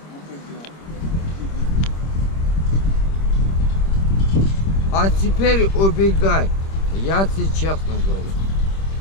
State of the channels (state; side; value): late; right; 26 ms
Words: Ну ты где? А теперь убегай. Я тебе честно говорю.